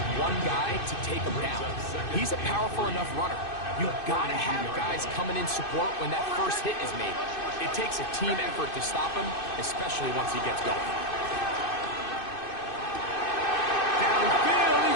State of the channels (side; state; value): right; late; 2.6 ms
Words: one guy to take him down. He's a powerful enough runner. You've got to have guys coming in support when that first hit is made. It takes a team effort to stop him, especially once he gets going. Downfield,